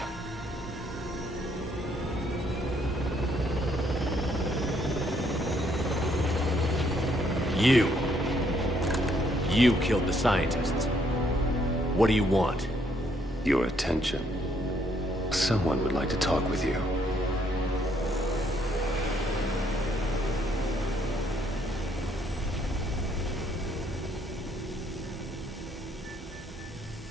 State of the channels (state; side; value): normal; both; correlation 0.70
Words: You killed the scientists. What do you want? Your attention. Someone would like to talk with you.